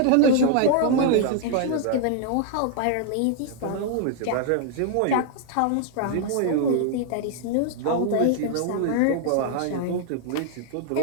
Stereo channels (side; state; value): both; different; correlation 0.00